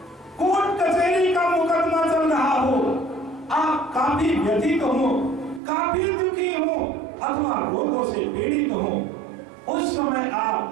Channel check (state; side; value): drops out; left; at 5.6 s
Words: कोर्ट कचहरी का मुकदमा चल रहा हो, आप काफी व्यथित हो, काफी दुखी हो अथवा रोगों से पीड़ित हो, उस समय